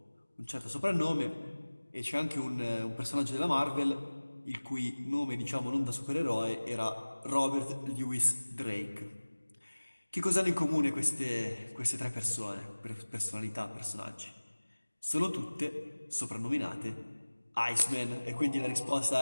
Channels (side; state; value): both; inverted; correlation -1.00